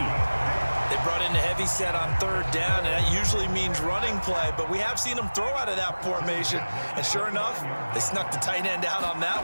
They brought in a heavy set on 3rd down, and that usually means running play, but we have seen them throw out of that formation, and sure enough, they snuck the tight end out on that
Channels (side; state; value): both; inverted; correlation -1.00